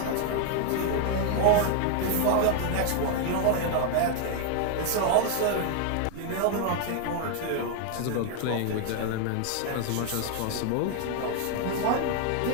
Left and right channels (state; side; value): different; both; correlation 0.00